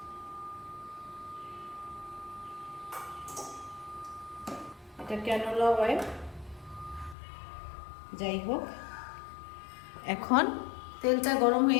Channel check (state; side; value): drops out; right; at 7.2 s